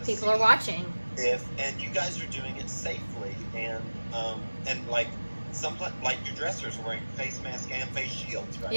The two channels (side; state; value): both; inverted; correlation -1.00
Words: People are watching. And you guys are doing it safely and like like your dressers are wearing face masks and face shields, right?